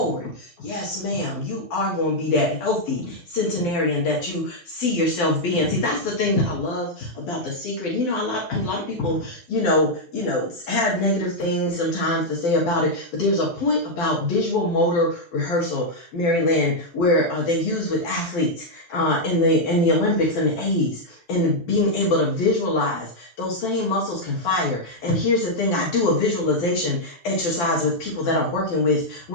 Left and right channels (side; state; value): right; late; 12 ms